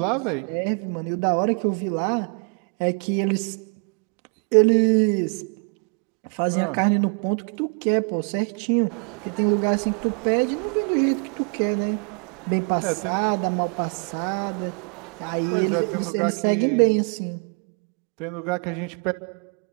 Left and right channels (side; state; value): left; quieter; 39.9 dB